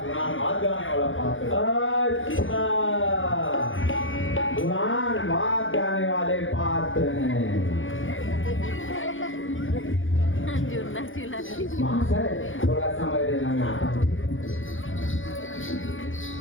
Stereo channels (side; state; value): right; late; 0.58 ms